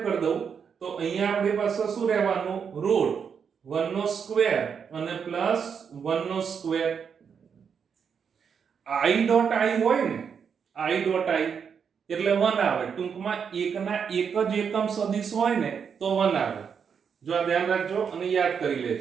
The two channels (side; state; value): left; quieter; 6.8 dB